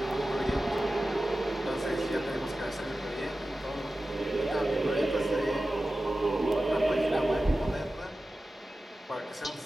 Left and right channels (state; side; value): normal; both; correlation 0.94